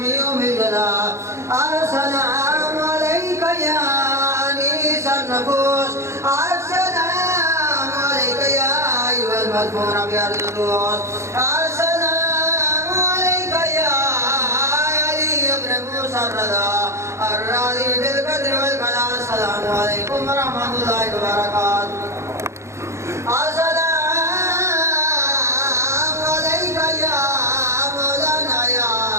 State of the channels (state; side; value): late; left; 0.14 ms